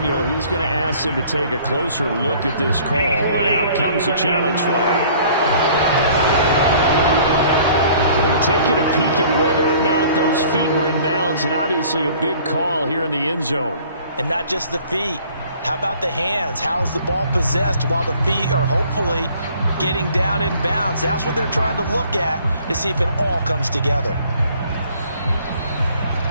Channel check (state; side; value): inverted; both; correlation -0.54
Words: he's going to ask him to take a closer look at this call, and out comes the challenge flag. They're taking a peek at whether or not those feet were in bounds, and obviously a big call here in the end zone. And not just the feet. How about the hands? How is the ball possessed while the feet are hopefully getting down in bounds? That's what they're trying to look at to see if it all comes together.